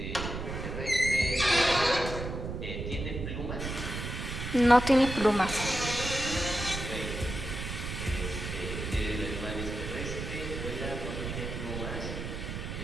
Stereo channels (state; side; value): noise; right; rumble, 5 dB below the sound